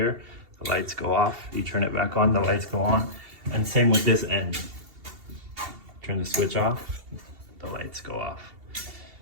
the lights go off. You turn it back on, the lights go on. And same with this end. Turn the switch off, the lights go off.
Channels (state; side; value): late; left; 2.7 ms